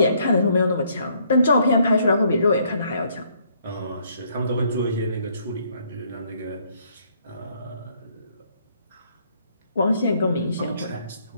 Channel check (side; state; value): both; inverted; correlation -0.67